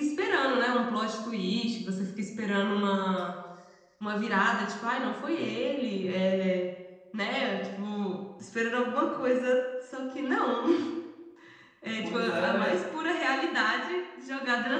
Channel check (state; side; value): identical; both; correlation 1.00